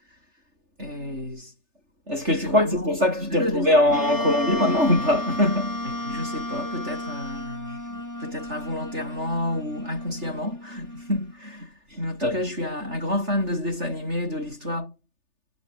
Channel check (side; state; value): left; late; 3.4 ms